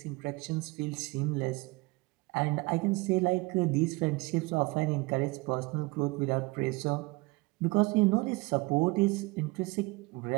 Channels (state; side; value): quieter; left; 24.2 dB